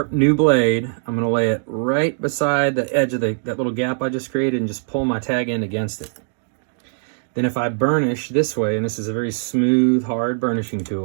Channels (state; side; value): silent; left; digital silence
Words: new blade, I'm going to lay it right beside the edge of that little gap I just created and just pull my tag end against it. Then if I burnish this way, and this is a very smooth, hard burnishing